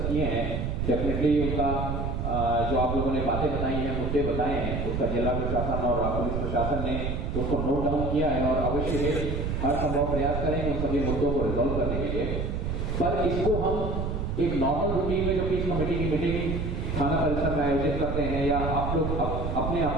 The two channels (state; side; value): noise; right; rumble, 2 dB below the sound